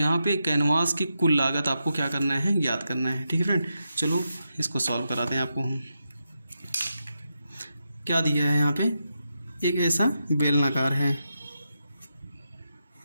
पे कैनवास की कुल लागत आपको क्या करना है, ज्ञात करना है, ठीक है फ्रेंड। चलो इसको सॉल्व कराते हैं आपको हम। क्या दिया है यहाँ पे, एक ऐसा बेलनाकार है,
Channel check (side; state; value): both; inverted; correlation -0.86